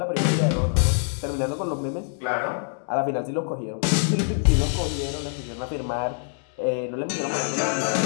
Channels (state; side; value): silent; right; digital silence